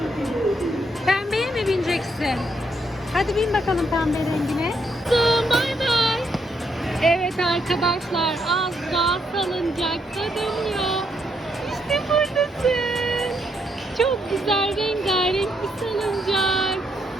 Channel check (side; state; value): both; normal; correlation 0.76